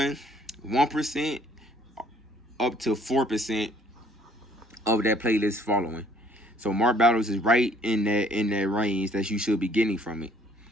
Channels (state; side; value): normal; both; correlation 0.60